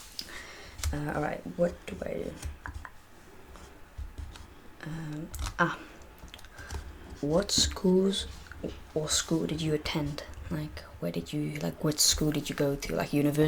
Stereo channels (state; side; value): identical; both; correlation 1.00